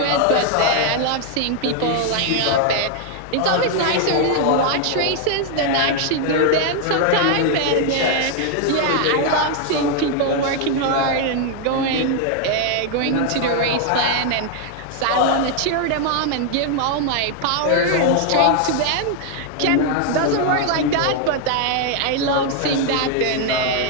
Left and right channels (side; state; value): both; different; correlation 0.00